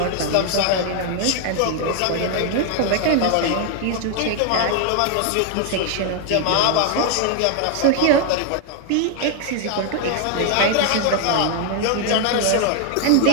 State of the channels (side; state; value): both; different; correlation 0.00